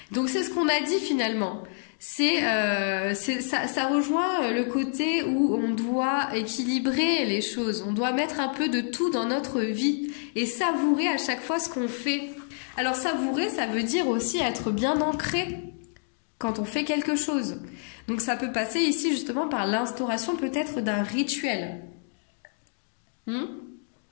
Donc c'est ce qu'on a dit finalement. Ça rejoint le côté où on doit équilibrer les choses. On doit mettre un peu de tout dans notre vie et savourer à chaque fois ce qu'on fait. Alors savourer, ça veut dire aussi être bien ancré quand on fait quelque chose. Donc ça peut passer ici justement par l'instauration peut-être d'un rituel.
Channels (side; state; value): right; silent; digital silence